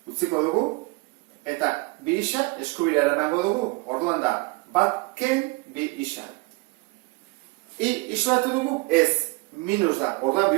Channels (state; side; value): quieter; left; 25.1 dB